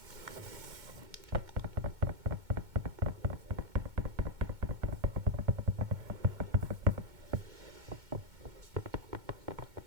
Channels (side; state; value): left; late; 2.2 ms